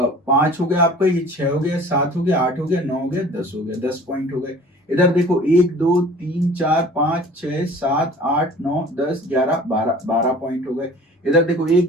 5 हो गया आपका, ये 6 हो गया, 7 हो गया, 8 हो गया, 9 हो गया, 10 हो गया, 10 पॉइंट हो गए। इधर देखो 1 2 3 4 5 6 7 8 9 10 11 12 पॉइंट हो गए। इधर देखो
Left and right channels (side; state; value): both; normal; correlation 0.47